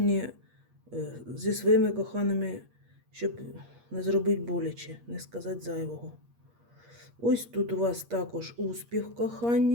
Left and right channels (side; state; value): left; late; 8.5 ms